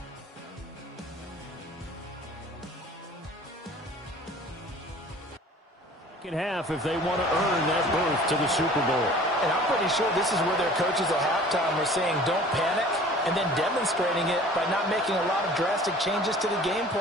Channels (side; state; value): both; normal; correlation 0.47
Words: Half if they want to earn that berth to the Super Bowl. And I'm pretty sure this is where their coaches at halftime were saying don't panic and then demonstrating it by not making a lot of drastic changes to the game